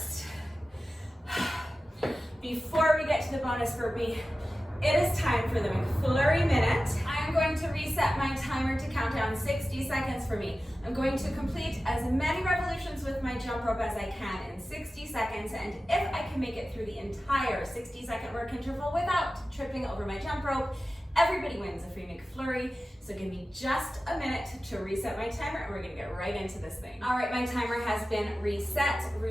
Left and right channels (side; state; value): both; normal; correlation 0.95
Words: before we get to the bonus burpee, it is time for the McFlurry minute. I am going to reset my timer to count down 60 seconds for me. I'm going to complete as many revolutions with my jump rope as I can in 60 seconds, and if I can make it through the entire 60-second work interval without tripping over my jump rope, everybody wins a free McFlurry. So give me just a minute to reset my timer, and we're gonna get right into this thing. All right, my timer has been reset.